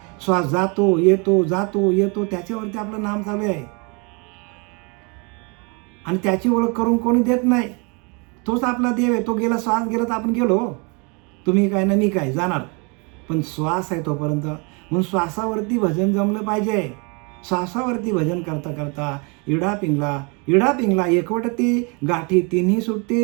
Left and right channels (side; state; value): left; quieter; 32.2 dB